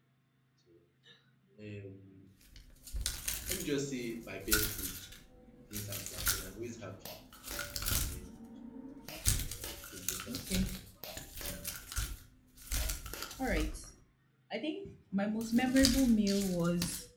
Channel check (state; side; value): identical; both; correlation 1.00